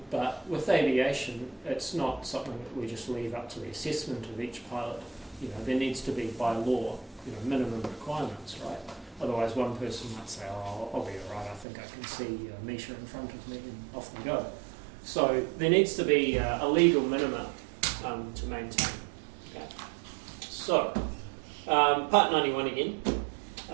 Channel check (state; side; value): drops out; left; at 11.7 s